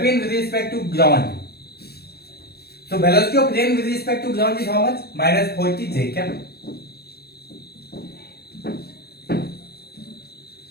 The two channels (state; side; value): late; right; 0.46 ms